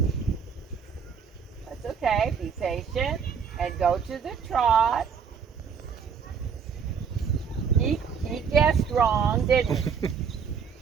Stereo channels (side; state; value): left; quieter; 6.5 dB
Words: That's okay. Be patient and go to the trot. He guessed wrong, didn't he?